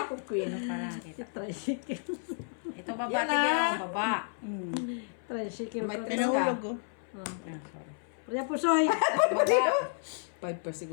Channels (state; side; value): silent; right; 57 dB below the other